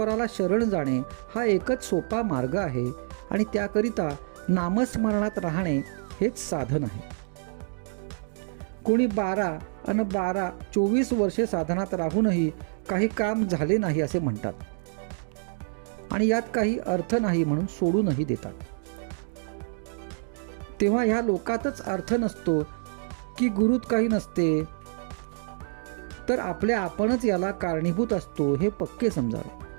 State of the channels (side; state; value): left; silent; digital silence